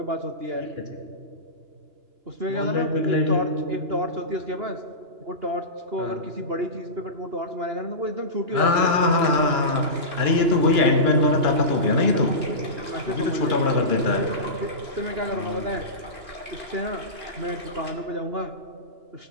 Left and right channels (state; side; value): late; left; 2.9 ms